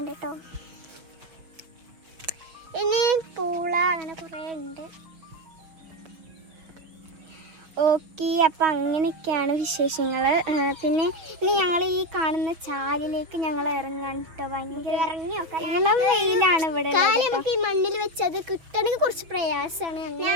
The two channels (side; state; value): left; late; 6.2 ms